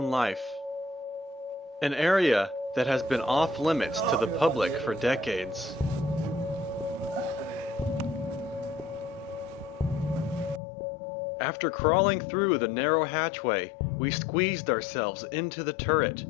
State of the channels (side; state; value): right; drops out; at 10.6 s